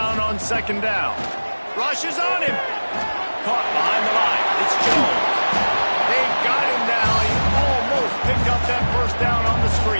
on second down. Rushes on him. Caught behind the line. It's Jones. They got him now. He almost picked up that first down on the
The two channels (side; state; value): both; inverted; correlation -1.00